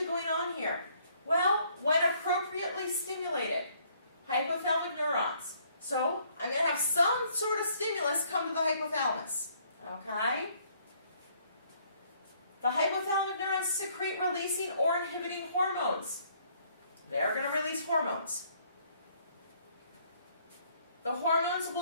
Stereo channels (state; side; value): inverted; both; correlation -0.65